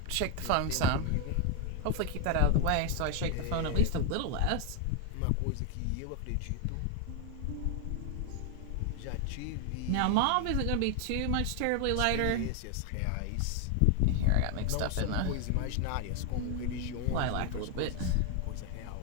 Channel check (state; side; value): different; both; correlation 0.01